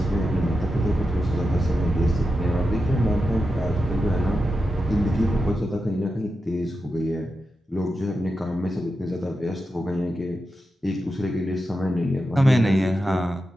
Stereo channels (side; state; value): both; normal; correlation 0.89